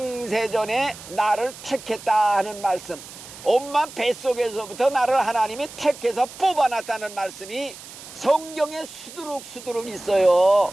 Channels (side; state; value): right; noise; hiss, 16 dB below the sound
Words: 나를 택했다 하는 말씀, 엄마 뱃속에서부터 나를 하나님이 택해서 뽑아놨다는 말씀이 성경에 수두룩 있어요.